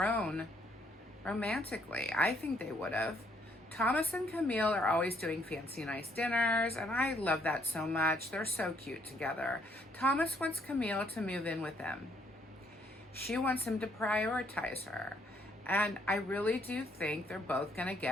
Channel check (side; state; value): both; normal; correlation 0.69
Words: romantically. I think they would have. Thomas and Camille are always doing fancy nice dinners, and I love that so much. They're so cute together. Thomas wants Camille to move in with him. She wants him to prioritize her. And I really do think they're both going to